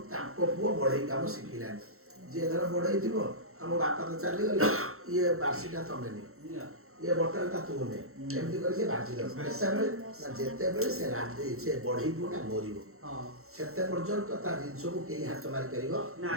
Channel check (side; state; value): left; late; 0.63 ms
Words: ତାଙ୍କ ପୁଅ ବଢେଇ କାମ ଶିଖିଲାନି। ଯିଏ ଧର ବଢେଇ ଥିବ ଆମ ବାପା ତ ଚାଲିଗଲେ ଇଏ ବାର୍ଷିକା ତମେ ନିଅ ଇଏ ବଟାଳିଟା ତୁ ନେ ଏମିତି କରି ସେ ବାଜିଦବ। ଯେତେବେଳେ ସେ ବଢେଇ ପୁଅଟା ମରିବ ସେତେ ପର୍ଯ୍ୟନ୍ତ ତା ଜିନିଷକୁ କେହି ହାତ ମାରିପାରିବ